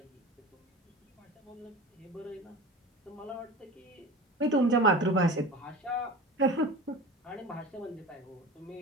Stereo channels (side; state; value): both; normal; correlation 0.33